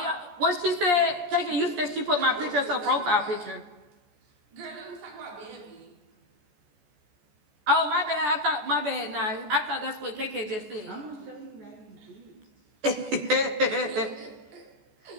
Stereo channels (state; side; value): late; left; 14 ms